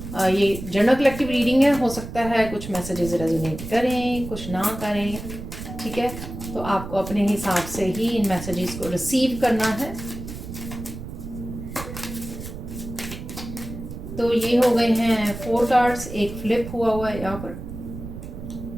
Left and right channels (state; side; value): noise; right; rumble, 10 dB below the sound